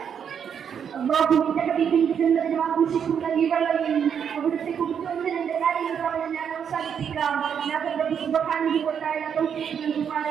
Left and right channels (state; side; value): quieter; left; 7.8 dB